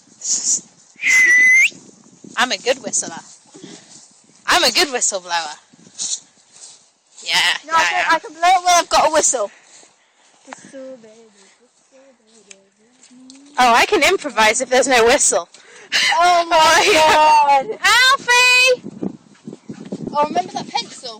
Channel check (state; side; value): identical; both; correlation 1.00